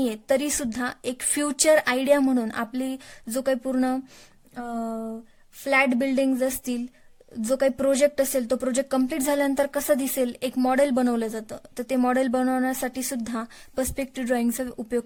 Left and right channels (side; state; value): both; identical; correlation 1.00